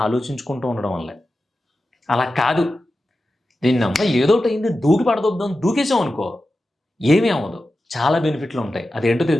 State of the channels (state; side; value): normal; both; correlation 0.92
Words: ఆలోచించుకుంటూ ఉండడం వల్లే. అలా కాదు, దీన్నమ్మ ఏదోటి అయింది దూకి పడదొద్దాం దూకేసాం అనుకో, ఏమీ అవ్వదు, చాలా బెనిఫిట్లు ఉంటాయి. అదేంటో